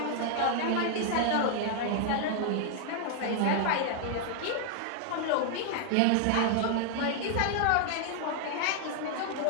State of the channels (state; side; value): different; both; correlation 0.00